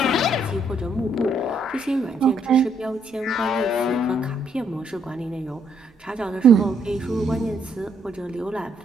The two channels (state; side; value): normal; both; correlation 0.71